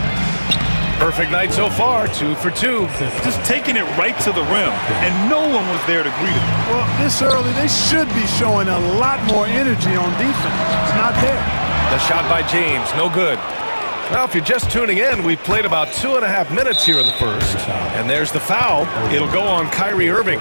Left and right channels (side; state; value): both; inverted; correlation -1.00